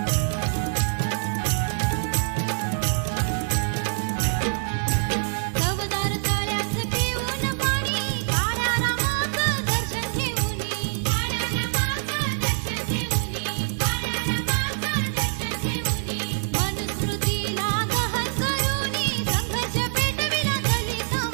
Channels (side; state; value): left; silent; 62 dB below the other